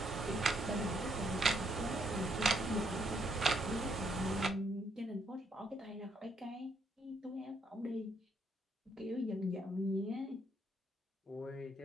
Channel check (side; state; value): both; normal; correlation 0.73